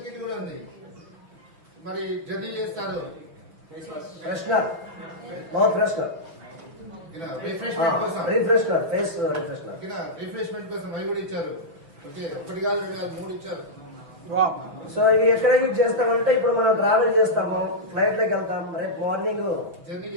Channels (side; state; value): left; late; 6.3 ms